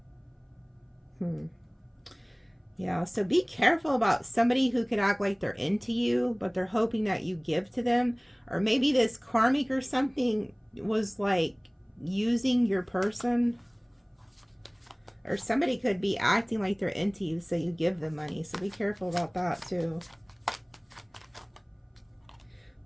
Yeah, so be careful about somebody who could act like they're into you, but they're hoping that you give to them. Or maybe this karmic or something was like using your person. Or somebody could be acting like they're into you, so you give them money. So be careful about that too.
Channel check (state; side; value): identical; both; correlation 1.00